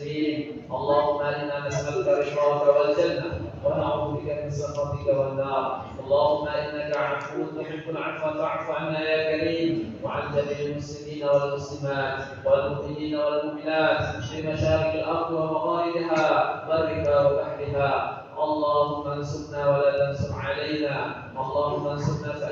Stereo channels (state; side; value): identical; both; correlation 1.00